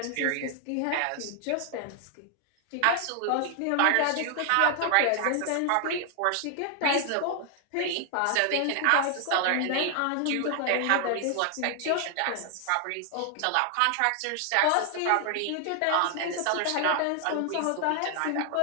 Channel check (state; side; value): different; both; correlation 0.00